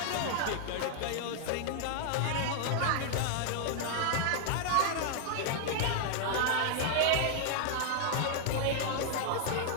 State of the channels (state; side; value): different; both; correlation 0.00